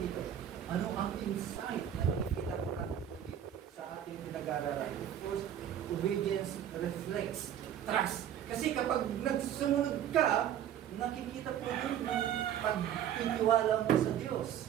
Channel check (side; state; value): left; quieter; 10.1 dB